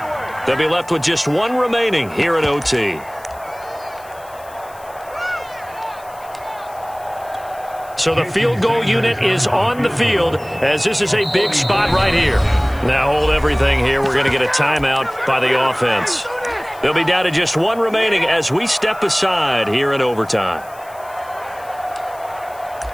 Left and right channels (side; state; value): left; noise; hiss, 24 dB below the sound